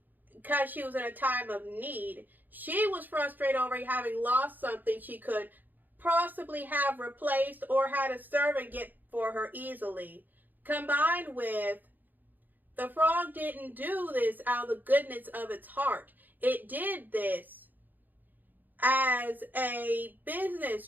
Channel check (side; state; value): left; late; 0.086 ms